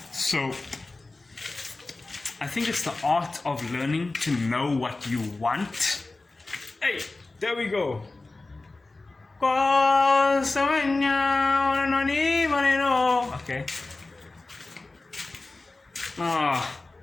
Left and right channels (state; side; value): quieter; right; 3.3 dB